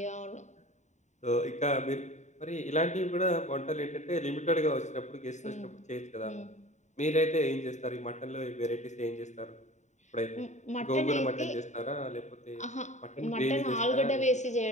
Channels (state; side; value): late; right; 0.34 ms